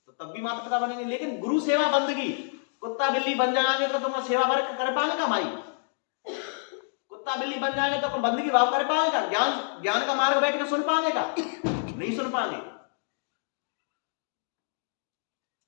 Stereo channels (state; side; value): silent; right; digital silence